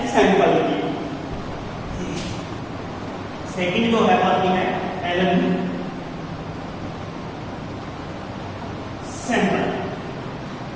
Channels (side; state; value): both; identical; correlation 1.00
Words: सैम्पल की। सेकंड जो है आती है एलन सैम्पल।